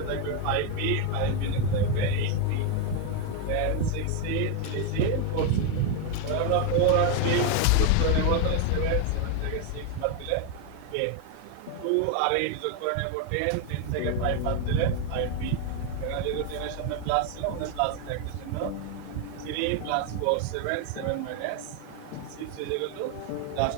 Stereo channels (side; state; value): both; different; correlation 0.01